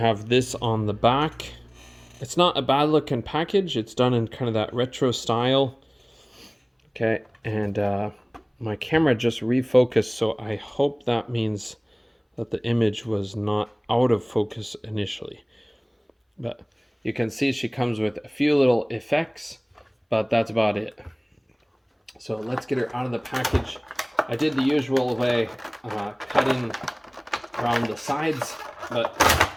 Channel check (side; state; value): both; identical; correlation 1.00